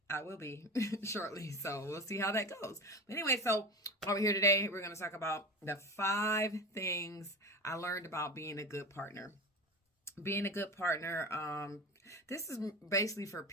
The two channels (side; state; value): both; normal; correlation 0.28